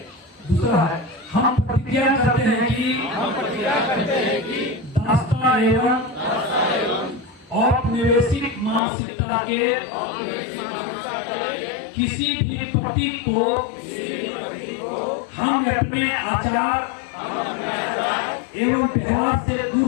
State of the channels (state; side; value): drops out; right; at 8.8 s